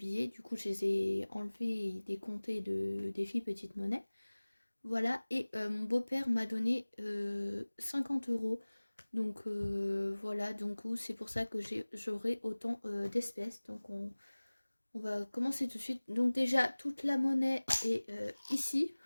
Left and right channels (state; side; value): inverted; both; correlation -1.00